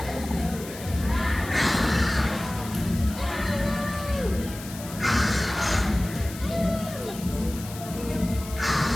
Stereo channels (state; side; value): noise; left; hiss, 14 dB below the sound